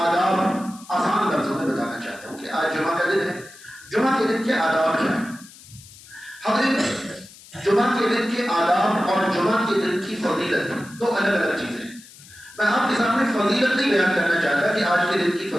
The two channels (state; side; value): noise; left; hiss, 21 dB below the sound